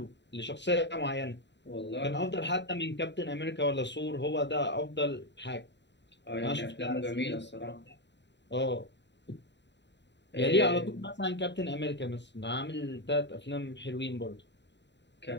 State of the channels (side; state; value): right; late; 0.52 ms